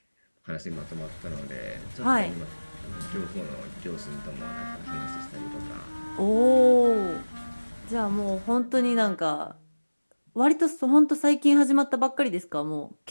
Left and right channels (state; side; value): inverted; both; correlation -1.00